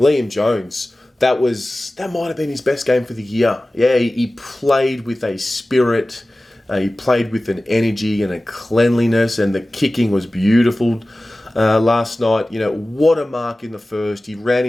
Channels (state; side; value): normal; both; correlation 0.97